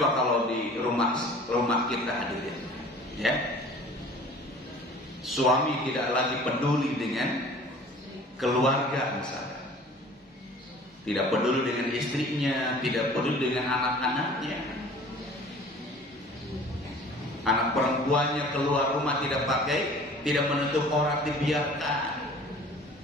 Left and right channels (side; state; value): both; normal; correlation 0.47